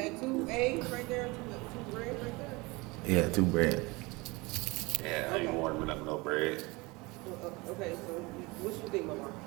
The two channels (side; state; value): left; quieter; 24.4 dB